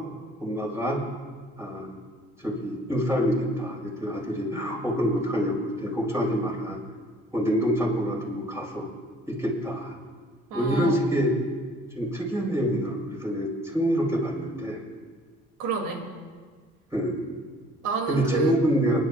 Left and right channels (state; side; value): normal; both; correlation 0.56